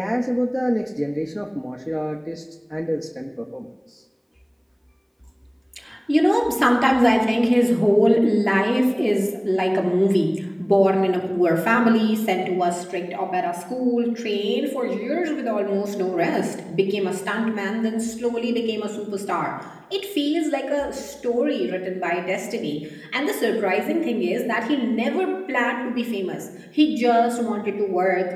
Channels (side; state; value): both; identical; correlation 1.00